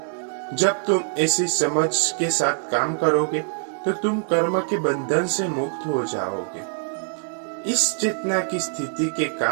जब तुम ऐसी समझ के साथ काम करोगे तो तुम कर्म के बंधन से मुक्त हो जाओगे। इस चेतना की स्थिति के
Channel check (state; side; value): silent; left; digital silence